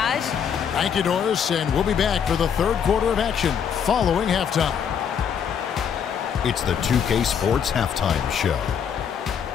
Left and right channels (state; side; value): quieter; right; 7.6 dB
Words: Thank you, Doris, and we'll be back for the third quarter of action following halftime. It's the 2K Sports Halftime Show.